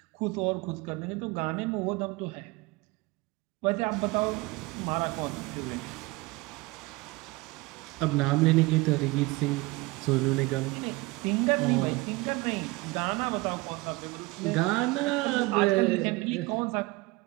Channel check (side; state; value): left; quieter; 22.5 dB